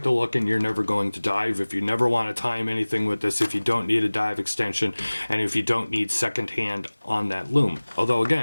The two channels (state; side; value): inverted; both; correlation -1.00